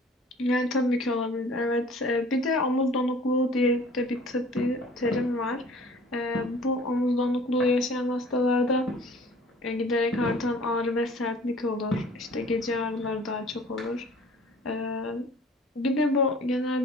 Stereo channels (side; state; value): both; normal; correlation 0.49